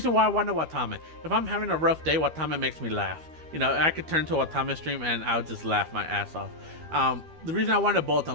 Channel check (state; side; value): late; left; 12 ms